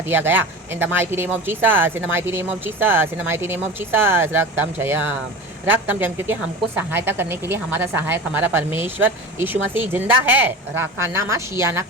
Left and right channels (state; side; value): normal; both; correlation 0.31